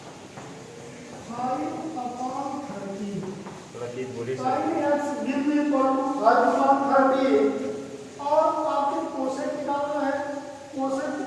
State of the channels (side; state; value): both; identical; correlation 1.00